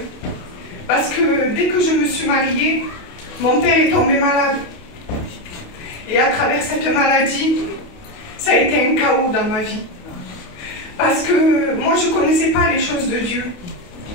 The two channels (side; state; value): right; late; 28 ms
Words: Parce que dès que je me suis mariée, mon père est tombé malade. Et à travers cette maladie, ça a été un chaos dans ma vie. Parce que moi, je ne connaissais pas les choses de Dieu.